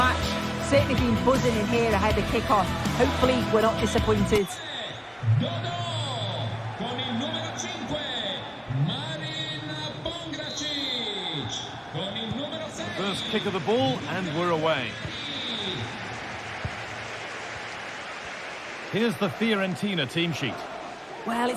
Certainly been buzzing in here ahead of kick-off. Hopefully we're not disappointed. Con il numero 5, Marin Pongracic. Con il numero 6. First kick of the ball, and we're away. Here's the Fiorentina team sheet. Well,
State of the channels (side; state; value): both; identical; correlation 1.00